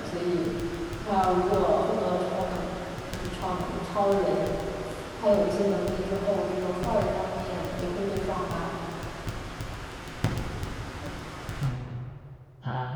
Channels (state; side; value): identical; both; correlation 1.00